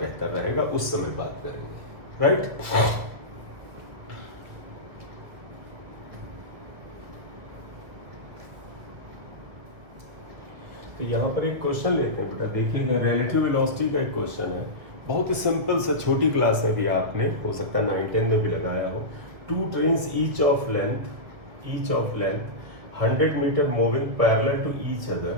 बेहतर रहेगा, उस समय बात करेंगे, राइट। तो यहाँ पर एक क्वेश्चन लेते हैं बेटा, देखिएगा रिलेटिव वेलोसिटी का एक क्वेश्चन है, बहुत ही सिंपल सा, छोटी क्लास में भी आपने हो सकता है 9-10 में भी लगाया हो। 2 trains each of length 100 metre moving parallel to each other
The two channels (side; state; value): left; late; 2.0 ms